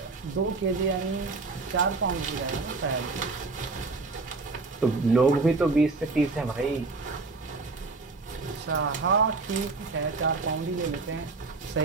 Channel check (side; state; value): left; quieter; 3.8 dB